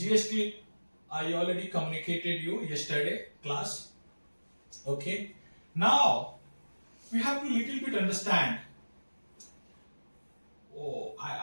I already communicated you yesterday class. Okay. Now, we have to little bit understand.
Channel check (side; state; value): both; inverted; correlation -1.00